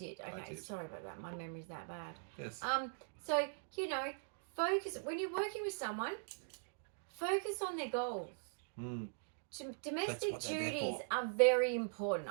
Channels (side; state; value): left; silent; digital silence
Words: Okay, sorry about that. My memory's that bad. Yes. So, focus... When you're working with someone, focus on their goals. Domestic duties are very important.